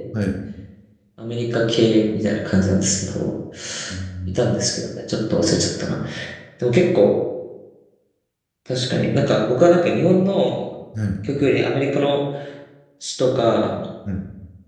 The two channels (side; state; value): both; identical; correlation 1.00